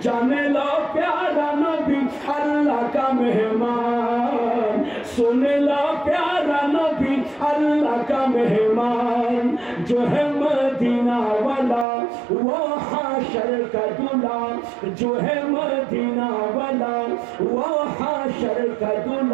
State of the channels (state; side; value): drops out; left; at 11.9 s